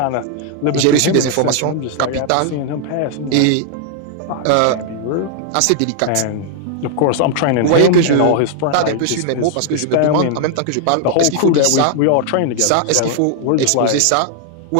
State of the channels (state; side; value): different; both; correlation 0.00